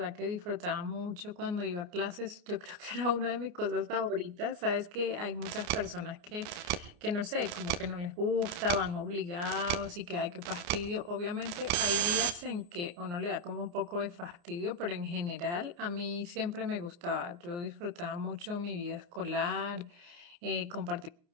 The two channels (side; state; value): left; late; 29 ms